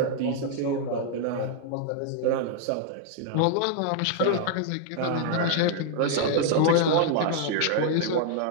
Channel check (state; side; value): different; both; correlation 0.00